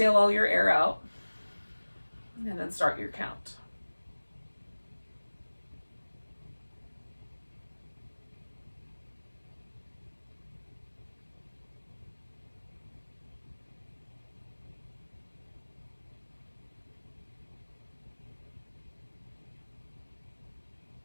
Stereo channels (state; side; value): inverted; both; correlation -1.00